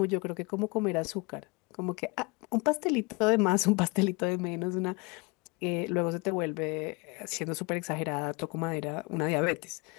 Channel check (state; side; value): quieter; right; 27.7 dB